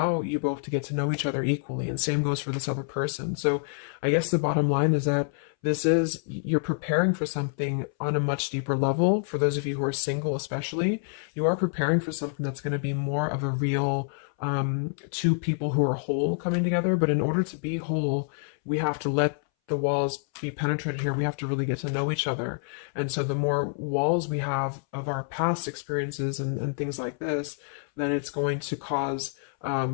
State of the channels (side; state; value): right; silent; 60 dB below the other